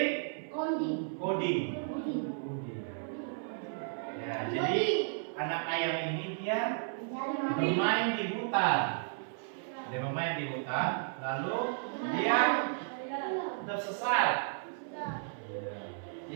coding. Ya, jadi anak ayam ini dia bermain di hutan. Dia bermain di hutan, lalu dia tersesat.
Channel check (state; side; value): silent; left; 55 dB below the other